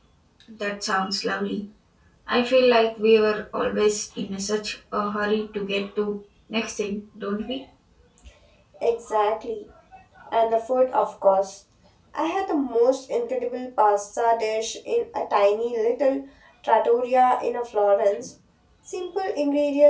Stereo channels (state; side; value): identical; both; correlation 1.00